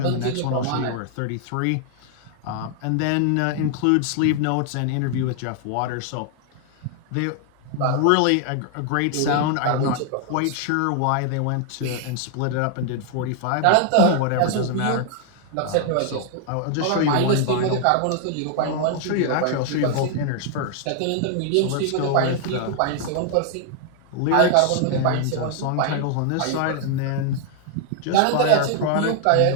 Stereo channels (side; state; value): both; different; correlation 0.00